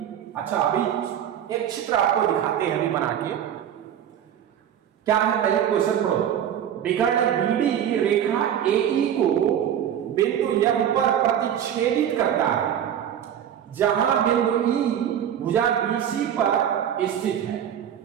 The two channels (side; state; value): left; quieter; 9.8 dB